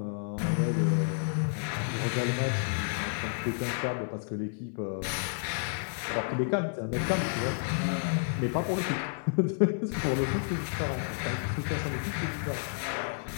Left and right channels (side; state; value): right; silent; 57 dB below the other